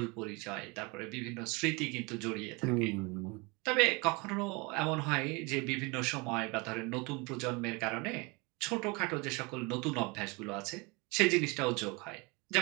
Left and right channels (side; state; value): left; quieter; 27.5 dB